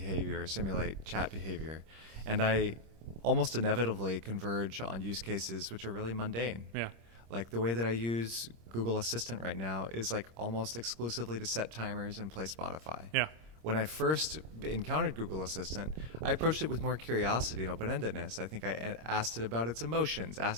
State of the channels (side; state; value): left; late; 26 ms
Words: simulate chat behavior. And I almost inevitably converge on use cases which are really mundane. Yeah. Like the way that I use Google Assistant right now is like almost exclusively to set timers and play Spotify. Yeah. When I first encountered Google Assistant, I approached it with more curiosity and open-endedness. I think I asked it about its emotions,